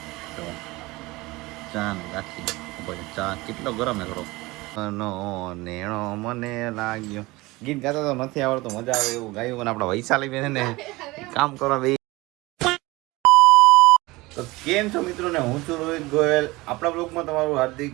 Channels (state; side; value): quieter; left; 21.5 dB